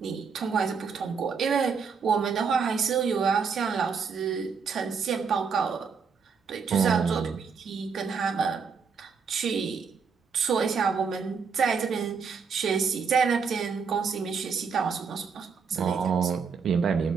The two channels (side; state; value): left; quieter; 5.8 dB